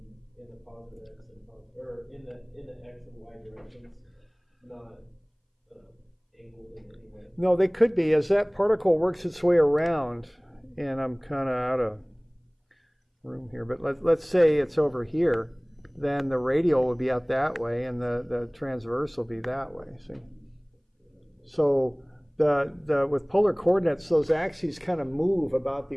in the positive x and or in the x and y directions, not angled in any way. No, they could be as that particle works its way around, and I'm kind of room here, but let's say it's over here, then the radial would be out that way and the transverse will be that way, see? So with polar coordinates, those axes kind of move about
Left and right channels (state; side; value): identical; both; correlation 1.00